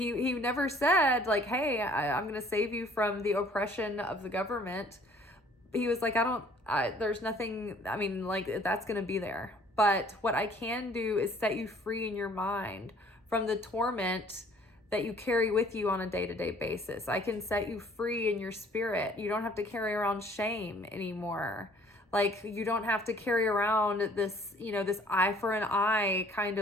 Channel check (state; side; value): normal; both; correlation 0.56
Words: never said like, hey, I'm going to save you from the oppression of the government. He was like, there's nothing, like, that's going to be there. But what I can do is set you free in your mind from the torment that you carry with you on a day-to-day basis. I can set you free in your spirit. You don't have to carry around shame anymore. Like, you don't have to carry around this, this eye for an eye kind